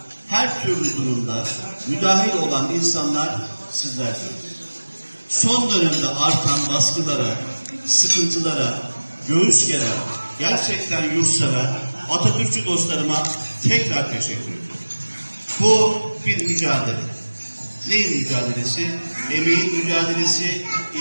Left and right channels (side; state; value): both; inverted; correlation -1.00